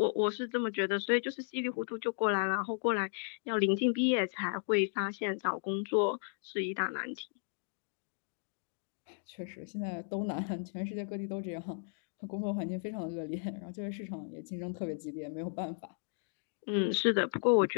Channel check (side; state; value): right; silent; digital silence